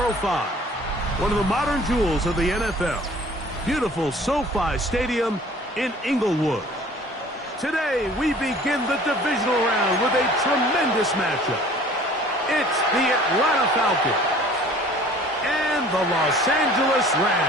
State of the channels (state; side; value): normal; both; correlation 0.50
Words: One of the modern jewels of the NFL. Beautiful SoFi Stadium in Inglewood. Today, we begin the divisional round with a tremendous matchup. It's the Atlanta Falcons and the Los Angeles